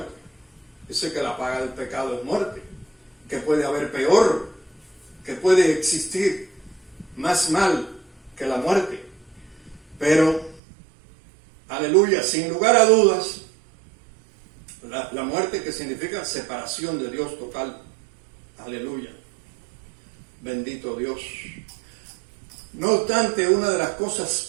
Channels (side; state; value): left; drops out; at 10.6 s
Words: Dice que la paga del pecado es muerte, que puede haber peor, que puede existir más mal que la muerte. Pero, aleluya, sin lugar a dudas, la muerte, que significa separación de Dios total. Aleluya. Bendito Dios. No obstante, una de las